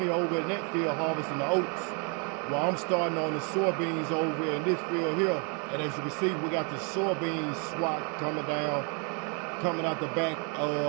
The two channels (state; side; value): quieter; left; 36.1 dB